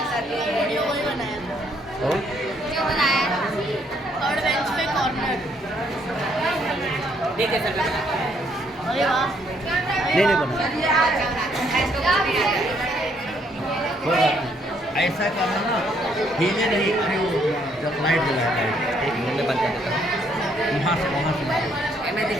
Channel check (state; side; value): normal; both; correlation 0.69